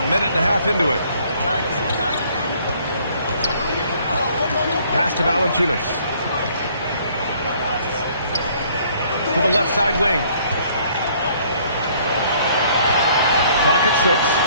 minute and a half into it. Pass to Valanciunas. To the left side wing. Clock at 6.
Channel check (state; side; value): inverted; both; correlation -0.61